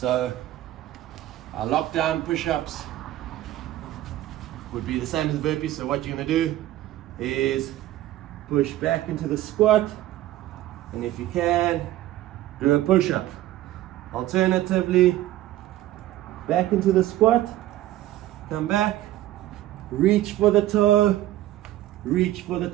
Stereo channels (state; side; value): quieter; left; 14.6 dB